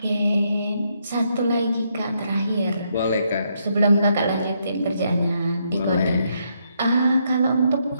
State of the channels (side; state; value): both; inverted; correlation -0.76